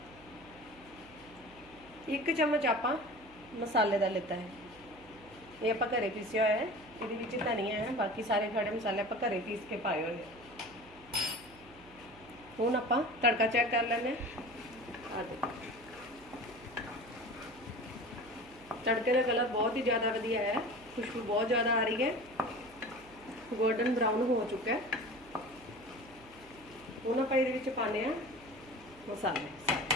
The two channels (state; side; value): noise; right; hum, 23 dB below the sound